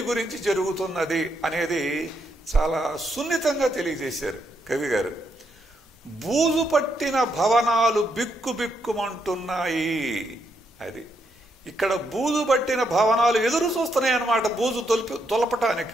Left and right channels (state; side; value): normal; both; correlation 0.78